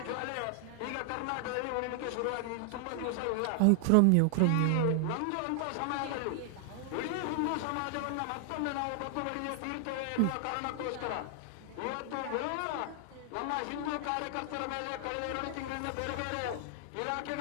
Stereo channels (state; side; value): different; both; correlation 0.00